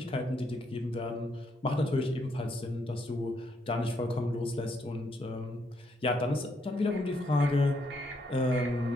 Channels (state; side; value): normal; both; correlation 0.75